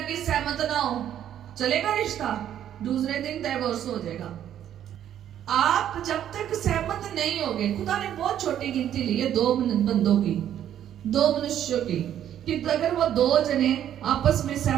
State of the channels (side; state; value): left; quieter; 10.6 dB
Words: सहमत ना हो, चलेगा रिश्ता? दूसरे दिन डिवोर्स हो जाएगा। आप जब तक सहमत नहीं होगे, खुदा ने बहुत छोटी गिनती ली है दो बंदों की, दो मनुष्यों की, कि अगर वो दो जने आपस में